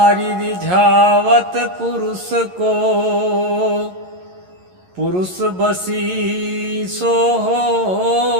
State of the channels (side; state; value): left; late; 11 ms